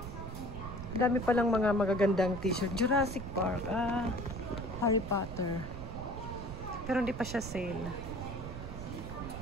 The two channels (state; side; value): noise; right; rumble, 9 dB below the sound